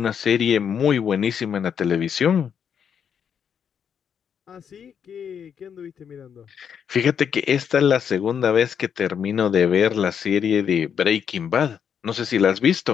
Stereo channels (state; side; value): quieter; right; 7.7 dB